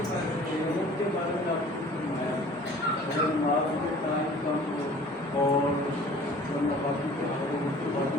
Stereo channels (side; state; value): both; normal; correlation 0.48